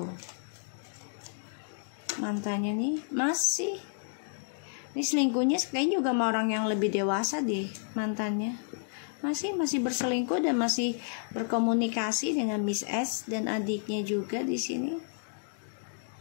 Mantannya nih masih. Ini selingkuhnya kayaknya juga sama orang yang lebih dewasa deh mantannya. Masih berselingkuh dan masih berkomunikasi dengan Miss S dan adiknya juga di sini.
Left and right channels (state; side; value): silent; right; digital silence